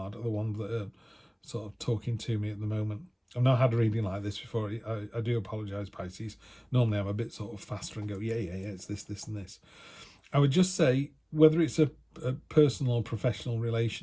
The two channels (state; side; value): identical; both; correlation 1.00